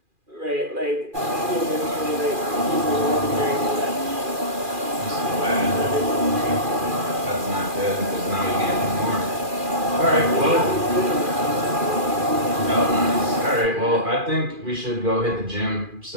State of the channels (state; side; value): late; left; 2.4 ms